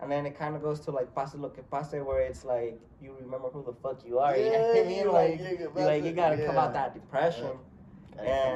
And then it kind of goes to, like, Pase Lo Que Pase, where it's, like, you remember who the fuck you are. You know what I mean? You gotta come out that depression. Gotta come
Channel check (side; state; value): both; identical; correlation 1.00